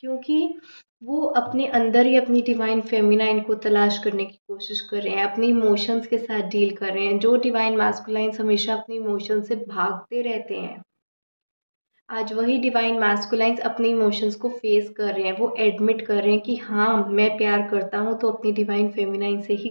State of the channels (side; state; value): both; inverted; correlation -1.00